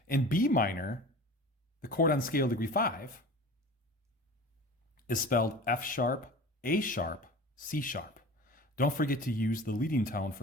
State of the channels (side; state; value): both; normal; correlation 0.38